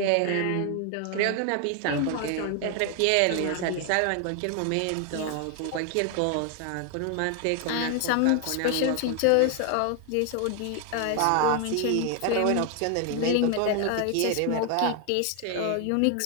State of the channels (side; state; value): both; different; correlation 0.00